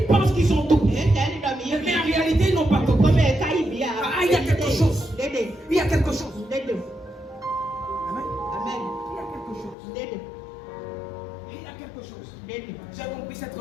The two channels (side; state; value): right; drops out; at 9.8 s